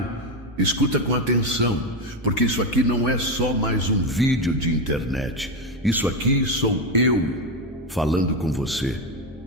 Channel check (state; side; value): normal; both; correlation 0.12